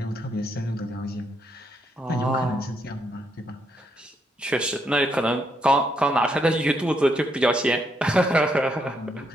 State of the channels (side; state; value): both; normal; correlation 0.76